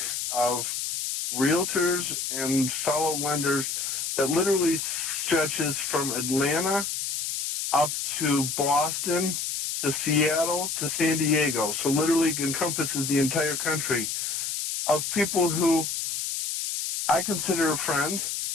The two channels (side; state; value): left; noise; hiss, 3 dB below the sound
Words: of realtors and fellow lenders that literally stretches from Atlanta up to Boston, to Seattle, to San Diego. So literally encompasses the entire country of people who I consider friends,